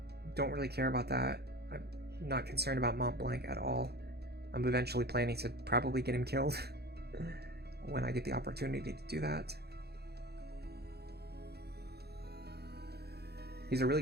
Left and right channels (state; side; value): late; left; 0.47 ms